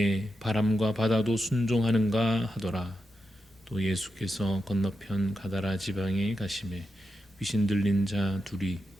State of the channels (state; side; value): normal; both; correlation 0.87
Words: 바람과 바다도 순종하는가 하더라. 또 예수께서 건너편 가다라 지방에 가시매 귀신 들린 자 둘이